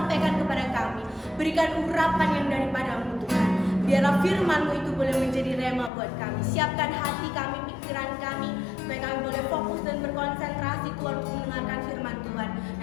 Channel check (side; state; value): right; drops out; at 5.9 s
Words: kepada kami. Berikan urapan yang daripada-Mu Tuhan. Biarlah firman-Mu itu boleh menjadi rema buat kami. Siapkan hati kami, pikiran kami, supaya kami boleh fokus dan berkonsentrasi Tuhan untuk mendengarkan firman Tuhan.